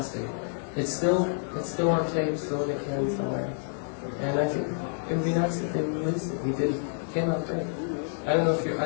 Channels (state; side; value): silent; right; digital silence